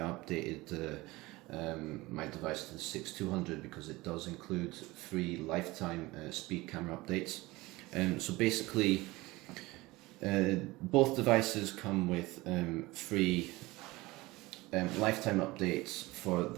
updated my device to the 6200, because it does include free lifetime speed camera updates. So basically both devices come with free lifetime updates for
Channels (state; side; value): quieter; left; 20.8 dB